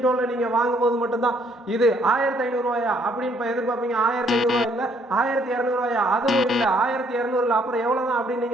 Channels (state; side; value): normal; both; correlation 0.67